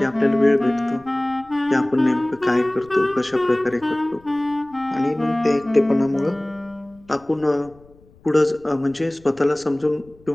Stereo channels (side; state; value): left; noise; rumble, 27 dB below the sound